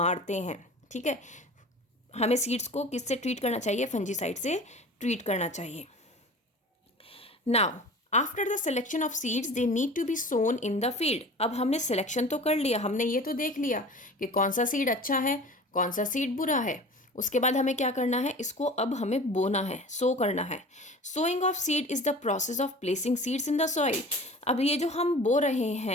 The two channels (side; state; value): both; normal; correlation 0.39